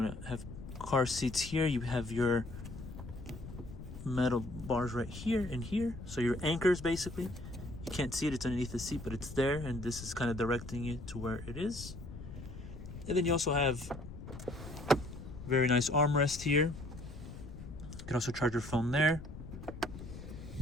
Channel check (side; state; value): left; noise; rumble, 12 dB below the sound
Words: to have car seats here, you have your metal bars right here and here. So your anchors, basically. You can't see it, it's underneath the seat, but it's there, and this is kind of directing you to where it is. And then you also have very nice armrest here. You can also charge your phone there.